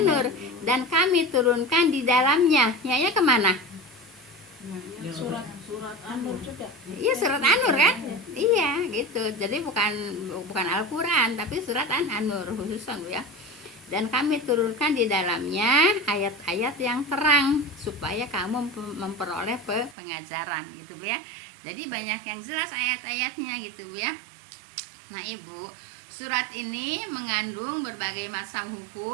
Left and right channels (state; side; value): drops out; left; at 20.0 s